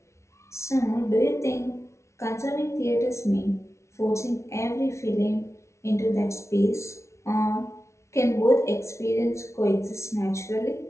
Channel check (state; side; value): late; right; 0.13 ms